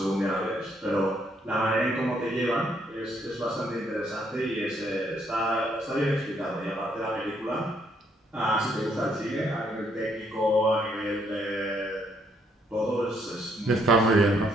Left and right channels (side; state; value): both; normal; correlation 0.70